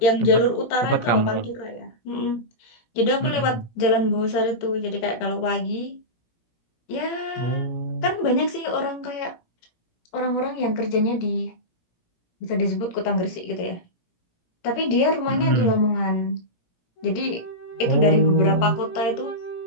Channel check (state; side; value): late; right; 17 ms